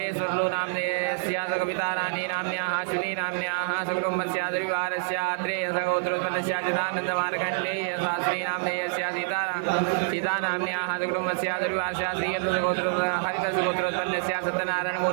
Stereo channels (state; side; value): silent; left; 60 dB below the other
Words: नामधेयस्य कविताराणी नाम्न्याः अश्विनी नाम्न्याः सकुटुम्बस्य द्विवारस्य अत्रेय गोत्रोत्पन्नस्य चिदानन्दमार्कण्डेय शास्त्री नामधेयस्य सीता नाम्न्याः सकुटुम्बस्य द्विवारस्य हरितस्य गोत्रोत्पन्नस्य